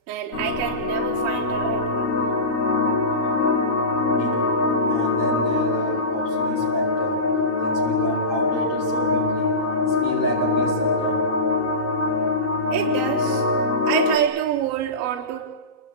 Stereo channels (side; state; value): left; late; 3.9 ms